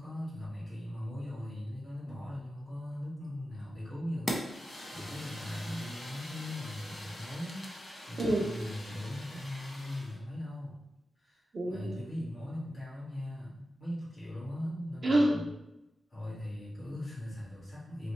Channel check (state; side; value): normal; both; correlation 0.93